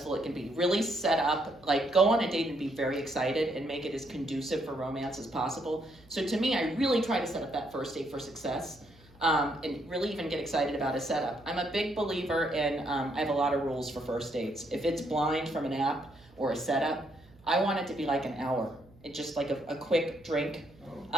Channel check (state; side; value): noise; right; hum, 26 dB below the sound